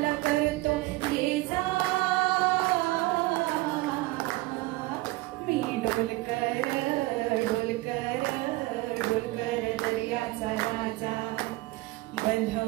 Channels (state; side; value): quieter; left; 20.4 dB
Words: करतो ये जा मी ढोलकर ढोलकर ढोलकर दर्याचा राजा